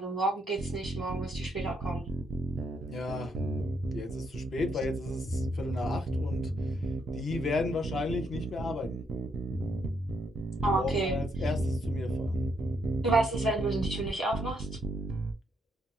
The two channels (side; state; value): both; normal; correlation 0.75